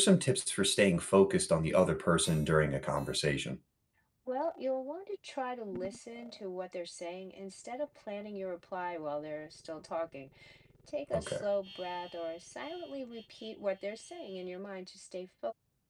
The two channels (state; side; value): identical; both; correlation 1.00